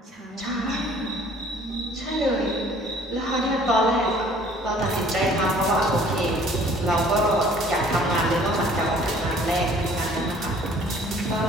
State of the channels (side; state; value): both; normal; correlation 0.55